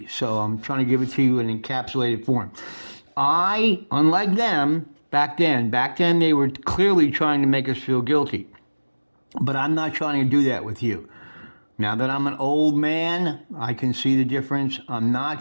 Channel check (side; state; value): both; inverted; correlation -1.00